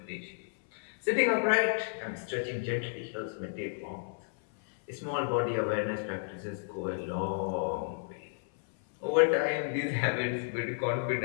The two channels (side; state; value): right; silent; 56 dB below the other